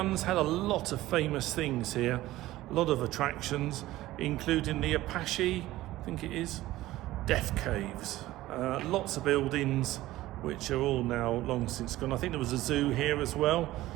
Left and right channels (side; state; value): left; quieter; 16.4 dB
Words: had a lot of famous things here, a lot of attractions, including the Apache, I think it is, Death Caves. Lots of buildings which are all now long since gone. I think there was a zoo here as well.